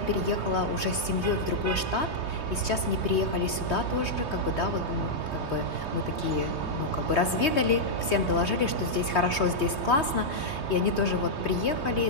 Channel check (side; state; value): right; late; 3.2 ms